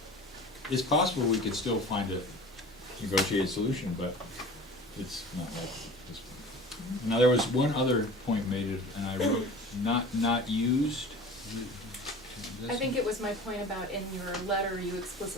it's possible we could still find a negotiated solution, but it's not like this point. Now, there was one other point made, and I wrote not used. I think it was my point about in your letter, you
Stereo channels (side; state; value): both; normal; correlation 0.40